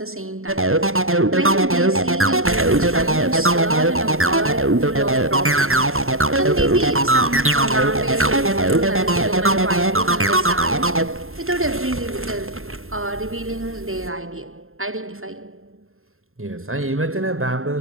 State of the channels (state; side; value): late; left; 0.61 ms